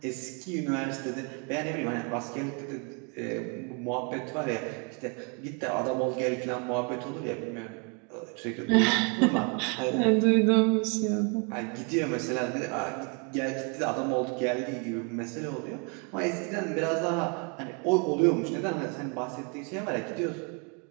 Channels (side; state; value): left; quieter; 35.7 dB